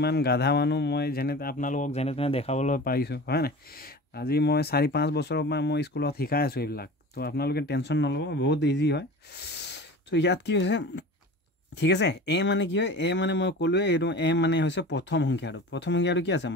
গাধা মানুহ মই আপোনালোকক যেনে তেনে দেখাবলৈ পাৰিছোঁ হয় নাই আজি মই 4-5 বছৰৰ পৰা মই স্কুলত শিকাই আছোঁ এইবিলাক তো আপোনালোকে টেনশ্যন নল'ব বহুত ইজি হয় তো ইয়াত কি হৈছে ঠিক আছে এ মানে কি হয় এ মানে মই ক'লোৱে এইটো এ মানে হৈছে প্ৰথম সংখ্যাটো কি আছে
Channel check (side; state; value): both; normal; correlation 0.36